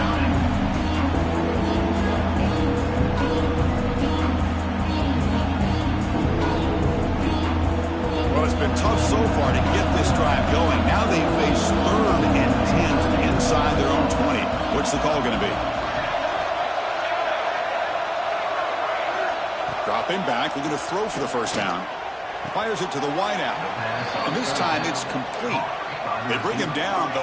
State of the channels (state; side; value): identical; both; correlation 1.00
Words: Tough so far to get this drive going. Now they face 3rd and 10 inside their own 20. What's the call going to be? Dropping back, looking to throw for the 1st down. Fires it to the wideout. And this time it's complete. They bring him down,